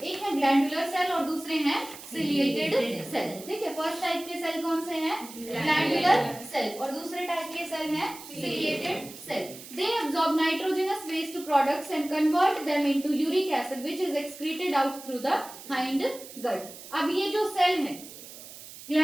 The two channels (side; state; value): right; noise; hiss, 15 dB below the sound